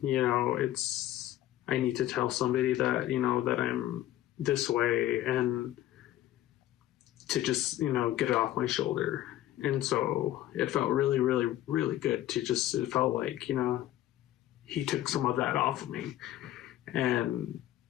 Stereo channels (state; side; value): quieter; right; 14.0 dB